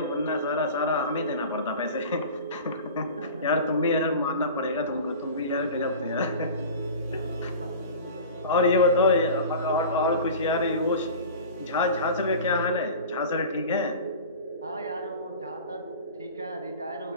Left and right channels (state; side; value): inverted; both; correlation -0.36